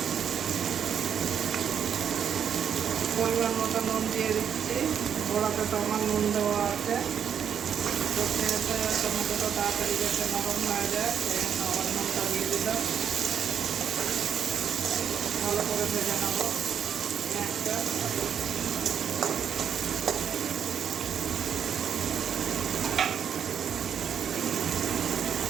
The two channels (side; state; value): left; quieter; 8.2 dB